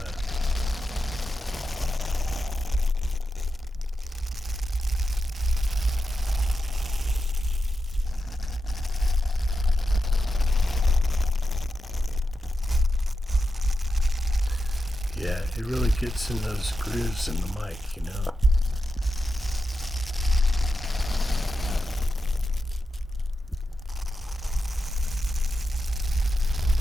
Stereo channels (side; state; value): both; normal; correlation 0.88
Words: Yeah, it really gets in those grooves in the mic, you know.